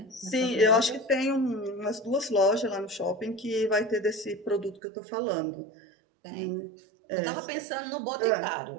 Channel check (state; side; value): drops out; left; at 4.8 s